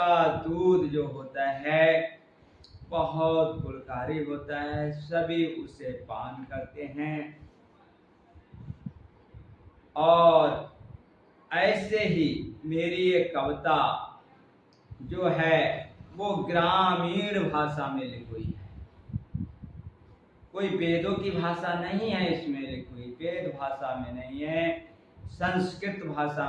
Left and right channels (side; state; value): both; identical; correlation 1.00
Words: दूध जो होता है बहुत गुणकारी होता है, सभी उसे पान करते हैं। और ऐसे ही मेरी ये कविता जो है वो ग्रामीण भाषा में लिखी हुई है, कोई वेदों की भाषा नहीं है इसमें लिखी हुई, वेद भाषा में नहीं है, संस्कृत भाषा